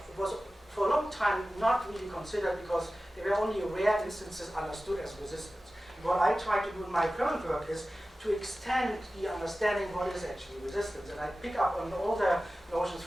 for a long time not really considered because there were only rare instances understood as resistance. And what I try to do in my current work is to extend the understanding what is actually resistance. And I pick up on all the notions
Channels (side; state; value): both; normal; correlation 0.96